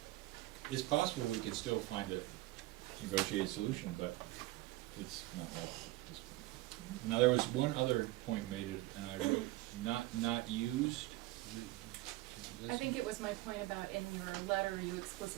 it's possible we could still find a negotiated solution, but it's not like this point. Now, there was one other point made, and I wrote not used. I think it was my point about in your letter, you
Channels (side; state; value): left; quieter; 18.4 dB